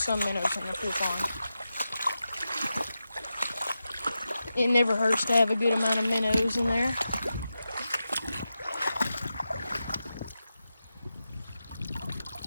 minnows in the pool pond. It never hurts to have a good amount of minnows in there.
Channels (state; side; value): inverted; both; correlation -0.91